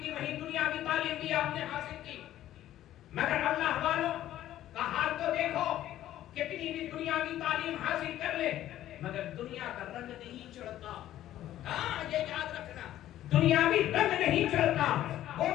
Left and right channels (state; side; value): quieter; right; 13.0 dB